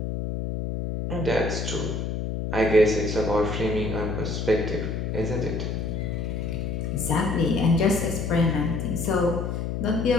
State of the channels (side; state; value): left; noise; hum, 3 dB below the sound